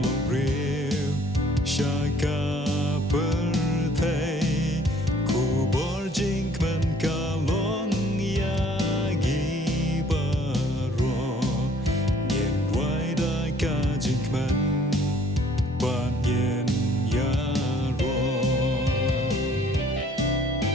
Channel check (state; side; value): normal; both; correlation 0.59